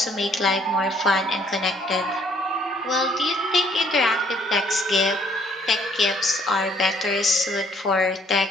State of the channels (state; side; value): normal; both; correlation 0.63